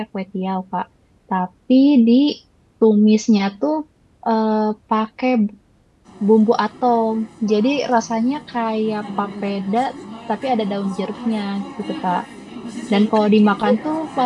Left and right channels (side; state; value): both; identical; correlation 1.00